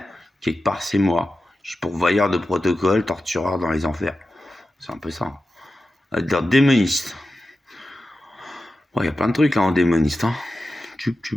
quelque part, c'est moi. Je suis pourvoyeur de protocole, tortureur dans les enfers. C'est un peu ça. Dans démoniste. Il y a plein de trucs là en démoniste. Hein.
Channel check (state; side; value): normal; both; correlation 0.92